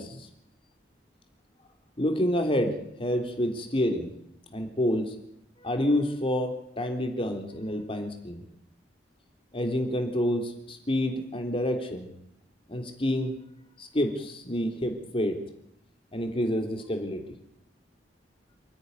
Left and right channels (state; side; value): normal; both; correlation 0.71